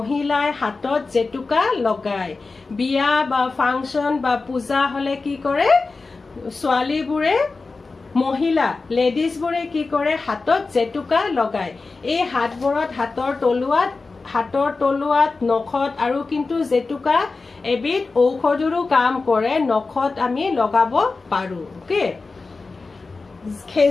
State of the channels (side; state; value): right; quieter; 3.9 dB